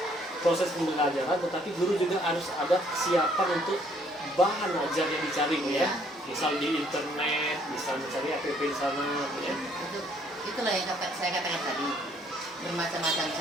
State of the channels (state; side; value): normal; both; correlation 0.64